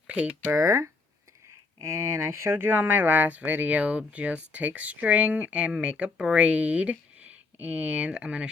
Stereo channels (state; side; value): quieter; right; 4.0 dB